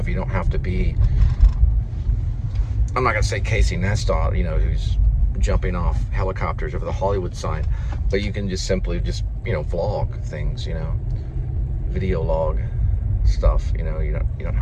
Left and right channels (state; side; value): identical; both; correlation 1.00